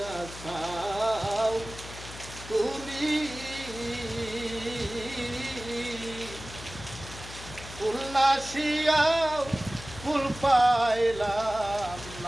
খাও তুমি ফুল নাসিয়াও ফুল পাইলাম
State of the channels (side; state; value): left; noise; hum, 14 dB below the sound